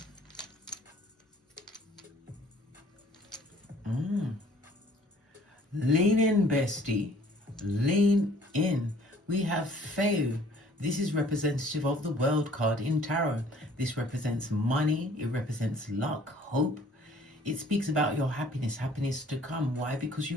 Lean in, bestie. Lean in. We have Feu. This is representative of the World card in Tarot. This represents money. It represents luck, hope. It speaks about your happiness to come. Why? Because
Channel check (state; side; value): normal; both; correlation 0.55